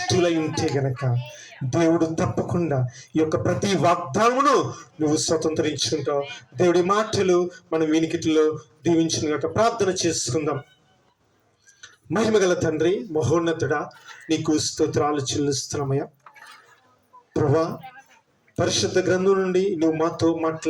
ఉంటే గనక దేవుడు తప్పకుండా ఈ యొక్క ప్రతి వాగ్దానమును నువ్వు స్వతంత్రించుకుంటావు. దేవుడి మాటలు మన వినికిటిలో దీవించిన గనక ప్రార్థన చేసుకుందాం. మహిమగల తండ్రి, మహోన్నతుడా, నీకు స్తోత్రాలు చెల్లిస్తున్నామయ్యా. ప్రభా, పరిశుద్ధ గ్రంథం నుండి నువ్వు మాతో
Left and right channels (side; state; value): both; identical; correlation 1.00